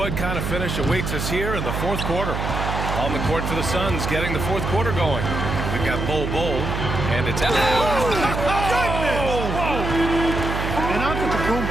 kind of finish awaits us here in the fourth quarter. On the court for the Suns, getting the fourth quarter going. We've got Bull, and it's...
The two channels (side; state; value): right; noise; hum, 3 dB below the sound